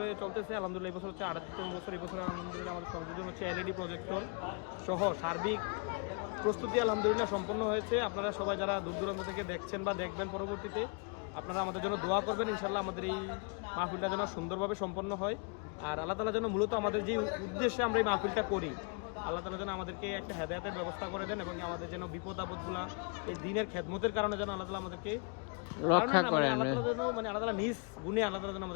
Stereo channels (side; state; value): right; quieter; 36.0 dB